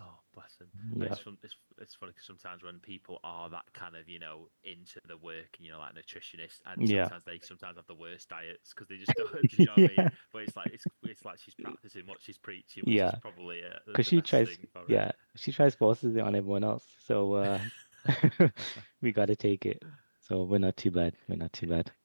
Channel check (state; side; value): inverted; both; correlation -1.00